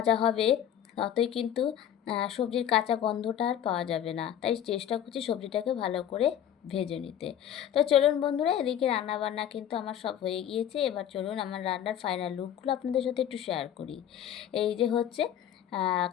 হবে ততই কিন্তু সবজির কাঁচা গন্ধটা আর পাওয়া যাবে না, তাই চেষ্টা করছি সবজিটাকে ভালো করে ভেজে নিতে। তো চলুন বন্ধুরা, এদিকে রান্নাবান্না কিন্তু আমার সব হয়ে গিয়েছে। এবার চলুন আমার রান্নার ফাইনাল লুকগুলো আপনাদের সাথে একটু শেয়ার করি। এই যে হচ্ছে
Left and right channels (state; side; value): quieter; right; 10.2 dB